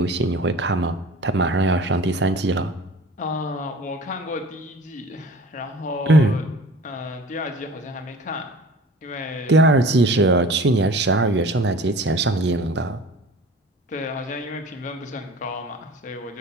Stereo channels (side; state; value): both; normal; correlation 0.42